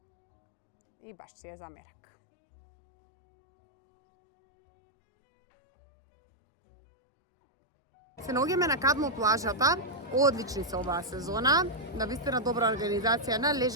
и баш си е за мерак. Се наоѓаме на Кадмо плажата, одлични се оваа сезона, навистина добра организација на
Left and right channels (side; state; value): both; normal; correlation -0.04